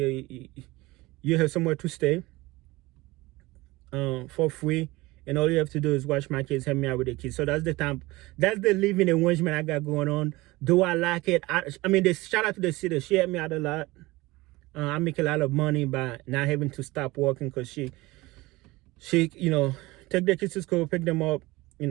You have somewhere to stay for free. And all you have to do is watch my kids, help me out with the kids. So that's the living arrangement I got going on. Do I like it? I mean, shout out to the city. She helped me out a lot. I make a lot of money by not having to stop working, because she take the kids to school, pick them up.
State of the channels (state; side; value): quieter; left; 20.8 dB